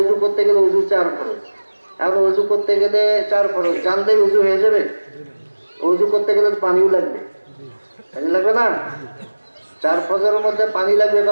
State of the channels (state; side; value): inverted; both; correlation -1.00